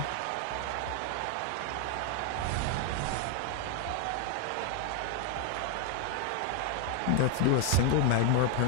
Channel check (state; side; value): different; both; correlation 0.01